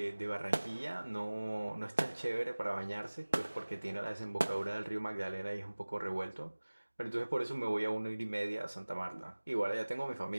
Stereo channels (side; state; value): both; inverted; correlation -1.00